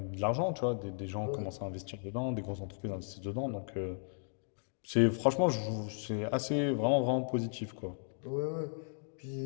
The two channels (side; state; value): right; silent; digital silence